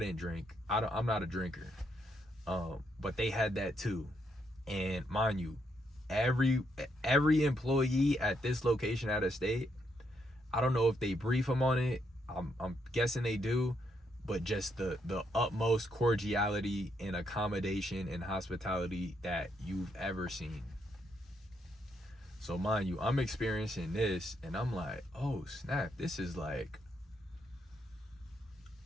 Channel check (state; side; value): normal; both; correlation 0.77